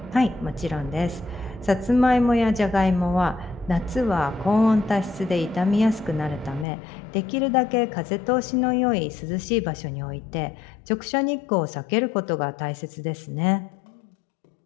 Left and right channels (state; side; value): drops out; right; at 6.7 s